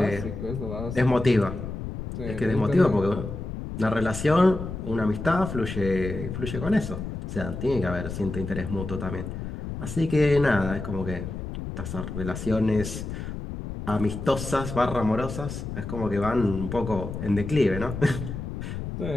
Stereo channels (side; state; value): left; noise; rumble, 7 dB below the sound